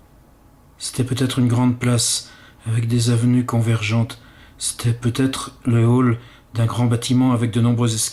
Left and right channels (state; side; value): identical; both; correlation 1.00